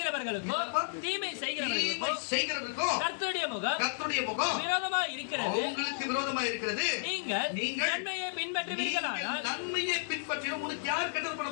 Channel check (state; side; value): silent; right; 56 dB below the other